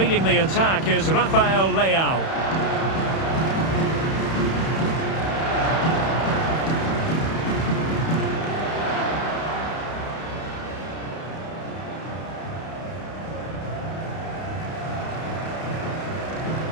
the attack is Rafael Leao.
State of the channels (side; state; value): right; late; 31 ms